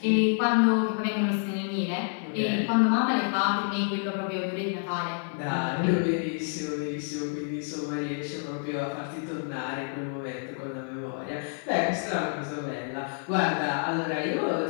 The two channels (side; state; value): right; silent; 59 dB below the other